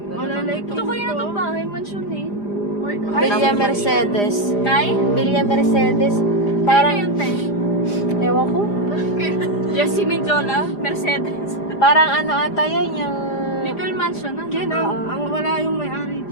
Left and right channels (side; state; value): right; late; 4.9 ms